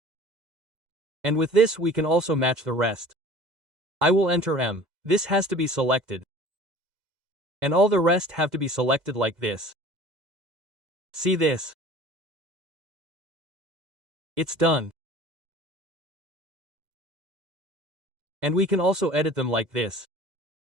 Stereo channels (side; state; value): left; late; 2.1 ms